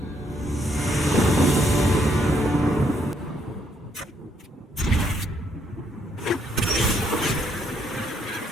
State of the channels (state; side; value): normal; both; correlation 0.72